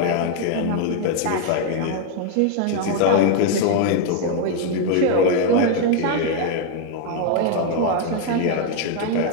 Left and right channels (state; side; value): different; both; correlation 0.01